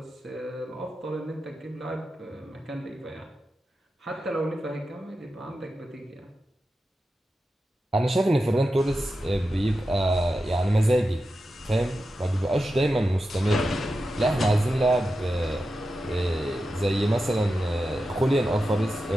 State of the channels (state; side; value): normal; both; correlation 0.91